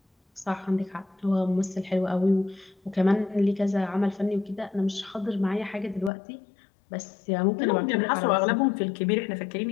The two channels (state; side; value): drops out; right; at 6.1 s